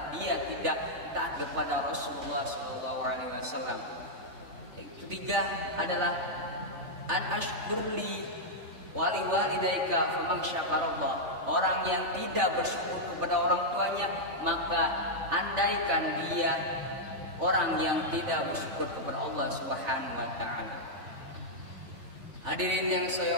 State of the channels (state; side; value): late; left; 3.4 ms